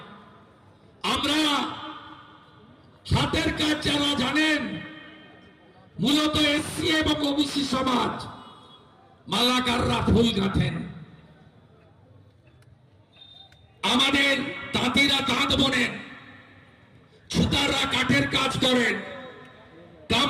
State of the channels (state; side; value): identical; both; correlation 1.00